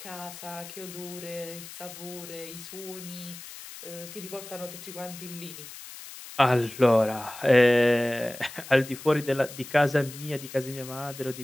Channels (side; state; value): left; noise; hiss, 14 dB below the sound